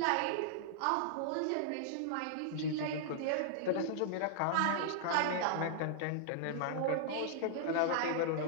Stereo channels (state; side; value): different; both; correlation -0.01